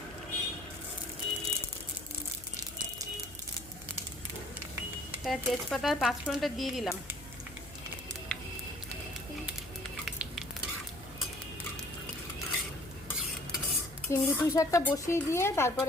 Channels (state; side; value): noise; left; hum, 18 dB below the sound